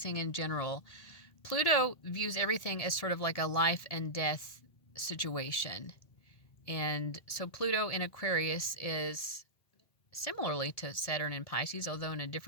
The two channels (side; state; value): right; late; 1.7 ms